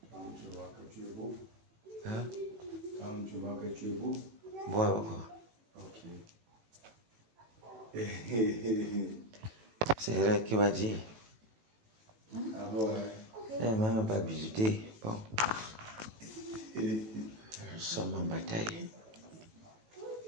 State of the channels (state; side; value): late; left; 18 ms